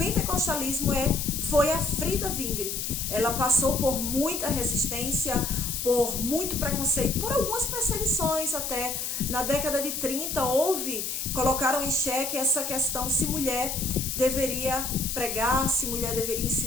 foi a Frida Wingre. Ela passou por muita resistência, por muito preconceito, por algumas perseguições até. Na década de 30 colocaram em xeque essa questão se mulher deveria pregar, se mulher deveria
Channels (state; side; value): noise; left; hiss, 3 dB below the sound